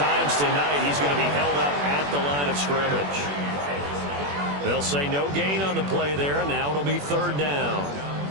tonight, he's going to be held up at the line of scrimmage. They'll say no gain on the play there, and now it'll be 3rd down.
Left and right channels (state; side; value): late; left; 21 ms